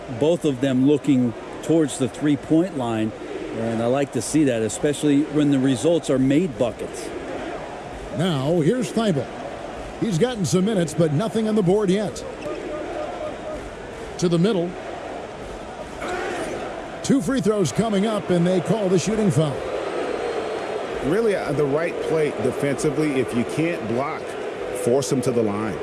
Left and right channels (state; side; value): identical; both; correlation 1.00